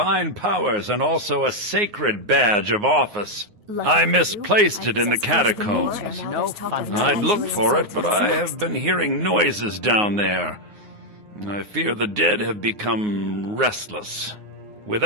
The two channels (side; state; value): left; late; 9.6 ms